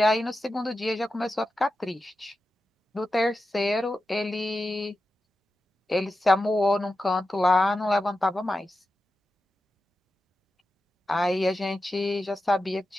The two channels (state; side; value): normal; both; correlation 0.91